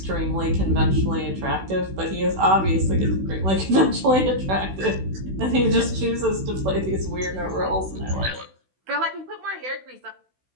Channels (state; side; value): late; left; 16 ms